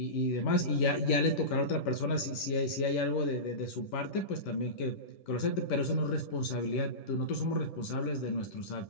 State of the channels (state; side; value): late; right; 11 ms